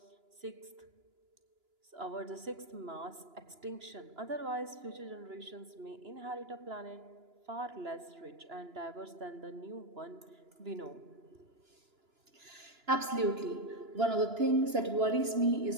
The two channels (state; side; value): late; left; 2.9 ms